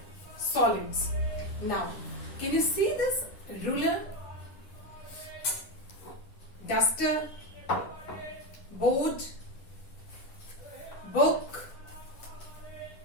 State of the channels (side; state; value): right; late; 10 ms